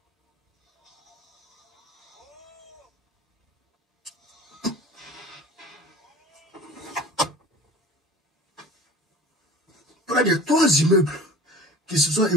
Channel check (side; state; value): both; normal; correlation 0.40